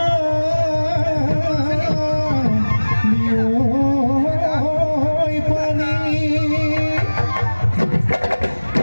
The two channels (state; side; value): inverted; both; correlation -1.00